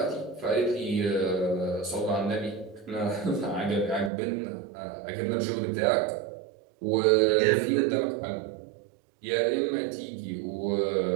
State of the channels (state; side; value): drops out; left; at 4.1 s